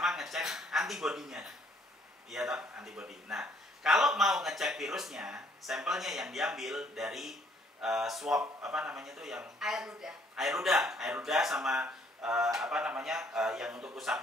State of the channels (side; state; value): both; normal; correlation 0.64